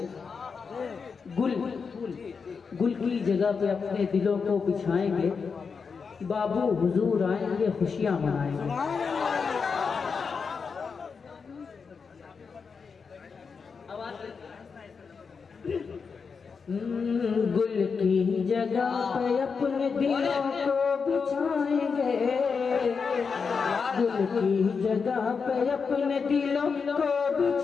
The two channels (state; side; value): quieter; right; 5.5 dB